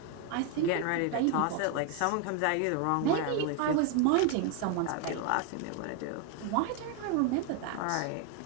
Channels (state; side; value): different; both; correlation 0.01